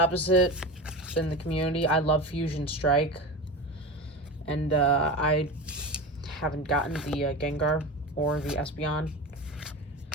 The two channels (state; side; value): normal; both; correlation 0.26